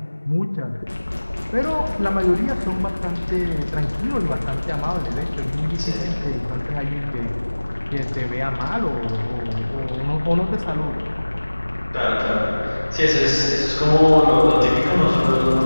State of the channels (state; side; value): inverted; both; correlation -1.00